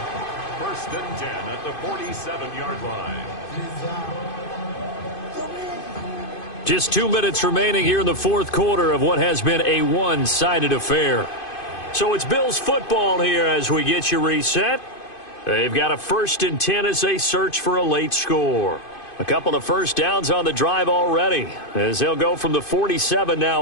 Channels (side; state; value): right; late; 2.5 ms